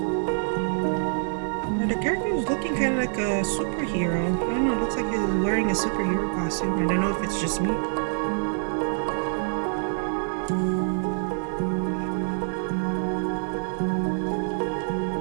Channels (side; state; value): left; silent; digital silence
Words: interesting. I don't know if it's just me.